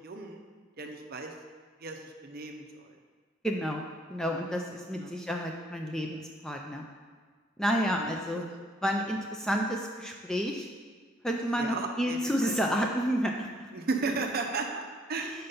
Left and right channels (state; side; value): normal; both; correlation 0.65